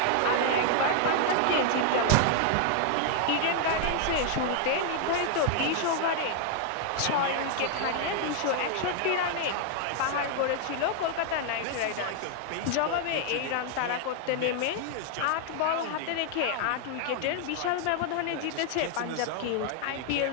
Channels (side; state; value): both; different; correlation 0.00